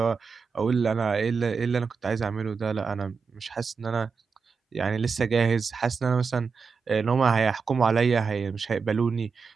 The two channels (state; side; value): quieter; left; 5.3 dB